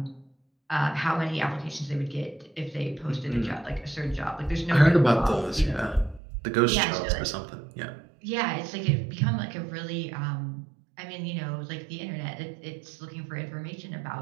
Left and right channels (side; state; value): left; drops out; at 6.2 s